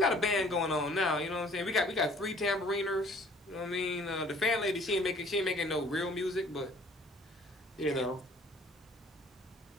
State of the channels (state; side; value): normal; both; correlation 0.55